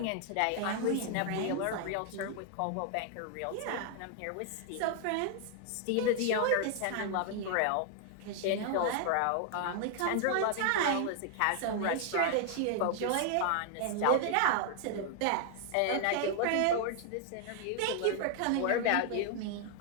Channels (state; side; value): different; both; correlation 0.00